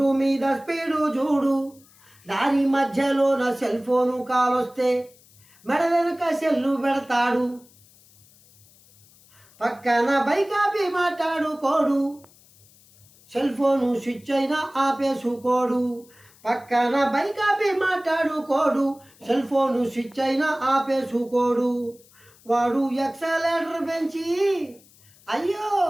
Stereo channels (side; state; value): left; noise; hiss, 28 dB below the sound